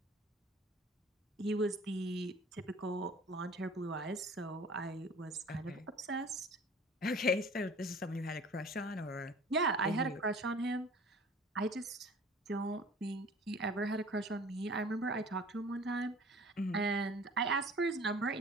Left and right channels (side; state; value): both; normal; correlation 0.47